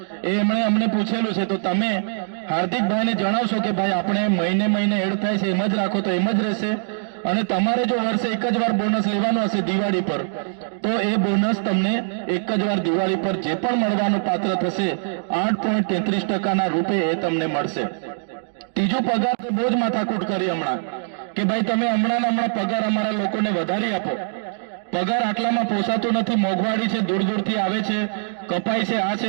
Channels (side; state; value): left; silent; digital silence